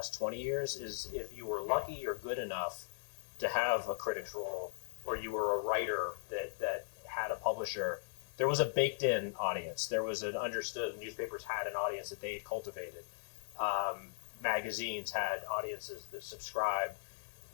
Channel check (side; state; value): right; silent; digital silence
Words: 20 years is if you were lucky or good enough to have a critic's role, or you were a writer that had a publisher, there was a baked-in audience. There was an understood, newspapers had an audience that they had cultivated. Magazines had audiences that subscribed.